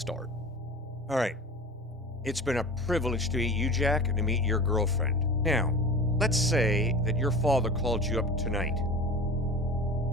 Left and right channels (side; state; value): both; normal; correlation 0.35